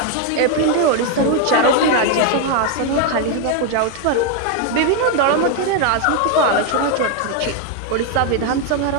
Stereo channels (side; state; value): both; different; correlation 0.01